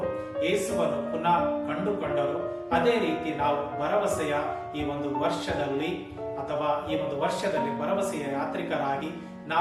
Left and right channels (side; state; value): both; identical; correlation 1.00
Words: ಯೇಸುವನ್ನು ಪುನಃ ಕಂಡುಕೊಂಡರು, ಅದೇ ರೀತಿ ನಾವು ಭರವಸೆಯ ಈ ಒಂದು ವರ್ಷದಲ್ಲಿ ಭರವಸೆಯ ಯಾತ್ರಿಕರಾಗಿ